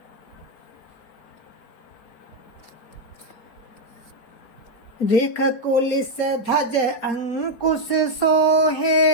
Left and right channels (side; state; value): right; late; 4.6 ms